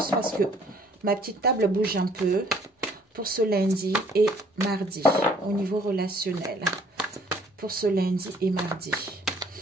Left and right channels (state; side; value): normal; both; correlation 0.59